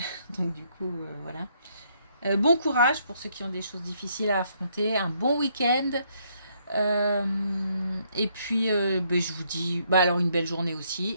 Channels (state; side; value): inverted; both; correlation -0.71